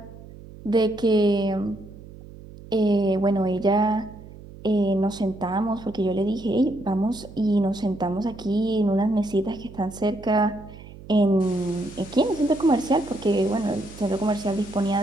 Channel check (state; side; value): noise; right; hum, 17 dB below the sound